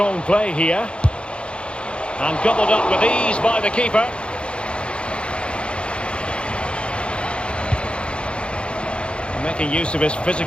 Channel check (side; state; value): right; late; 0.057 ms